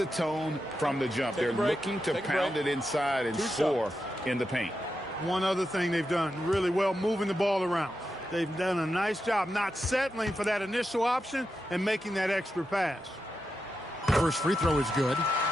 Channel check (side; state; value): both; normal; correlation 0.88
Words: tone from the jump. They're looking to pound it inside and score in the paint. One other thing they've done really well, moving the ball around. They've done a nice job not settling for that initial option and making that extra pass. First free throw is good.